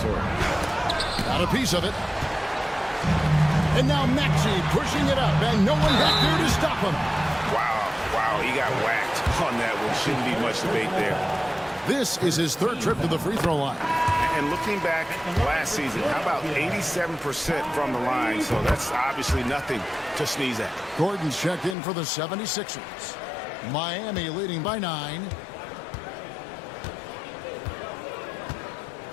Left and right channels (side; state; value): right; drops out; at 21.8 s